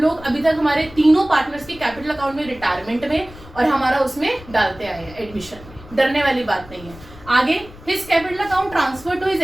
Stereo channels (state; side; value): noise; left; rumble, 19 dB below the sound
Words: अभी तक हमारे तीनों पार्टनर्स के कैपिटल अकाउंट में, रिटायरमेंट में और हमारा उसमें डालते आए हैं एडमिशन में, डरने वाली बात नहीं है। आगे his capital account transfer to his